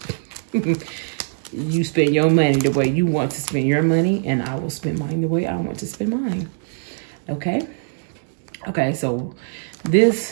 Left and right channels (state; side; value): silent; left; digital silence